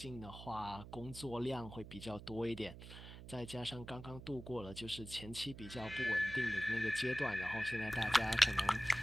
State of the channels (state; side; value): noise; right; hum, 13 dB below the sound